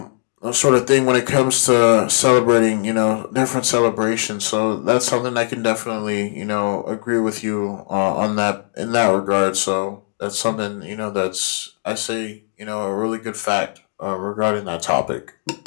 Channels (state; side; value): silent; right; digital silence